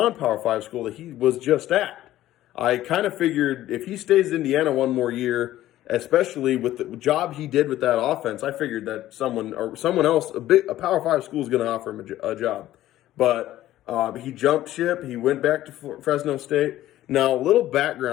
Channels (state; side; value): quieter; right; 14.1 dB